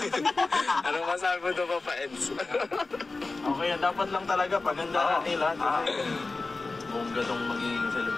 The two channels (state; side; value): quieter; right; 3.6 dB